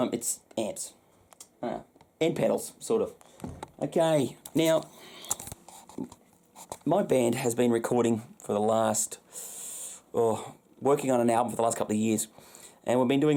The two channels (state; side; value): identical; both; correlation 1.00